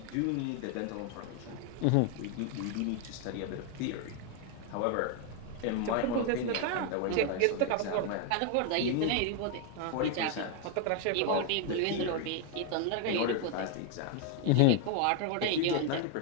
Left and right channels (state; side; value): different; both; correlation 0.01